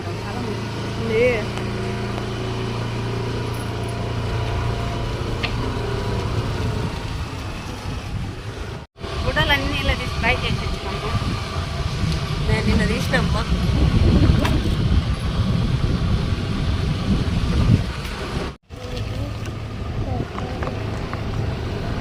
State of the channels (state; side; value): identical; both; correlation 1.00